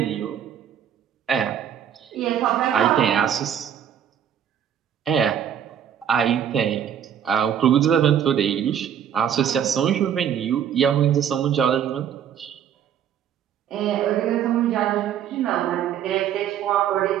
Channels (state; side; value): quieter; left; 9.2 dB